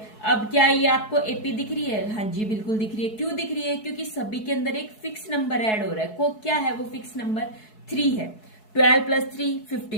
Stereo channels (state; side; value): late; right; 4.7 ms